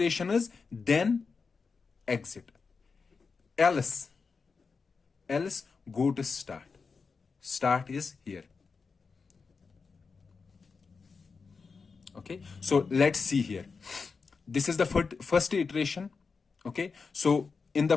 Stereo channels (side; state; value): right; quieter; 4.9 dB